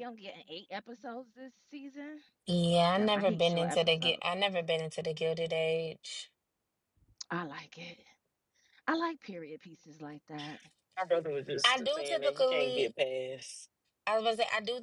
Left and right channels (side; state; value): both; identical; correlation 1.00